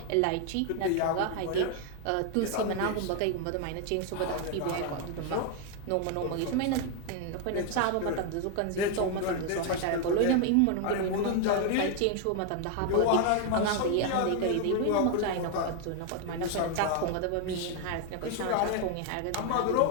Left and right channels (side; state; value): both; different; correlation 0.01